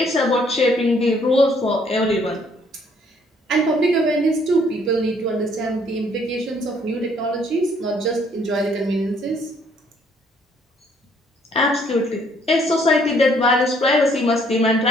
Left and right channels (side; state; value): both; normal; correlation 0.65